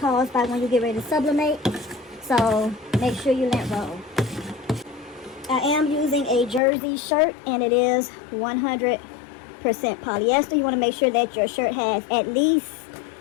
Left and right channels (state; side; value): drops out; right; at 6.6 s